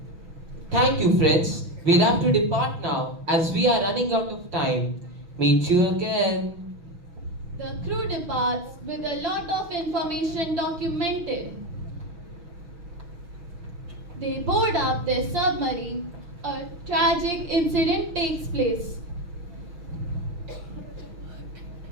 Thank you, friends. We'll have to depart now as we are running out of time. Meet you again. The crew departs with a lot of information documented. They board up their submarine. A tragic incident takes place.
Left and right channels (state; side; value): late; left; 6.2 ms